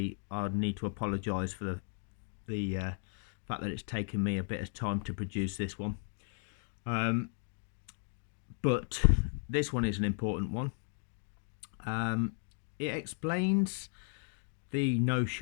I need to apologise for the fact that it's taken me a bit of time to produce this one. But this one is an important one. It explains the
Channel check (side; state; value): right; silent; 54 dB below the other